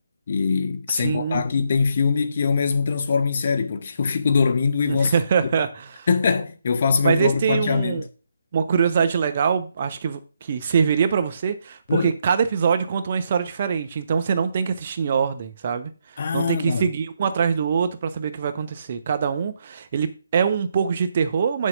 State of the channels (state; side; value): inverted; both; correlation -0.76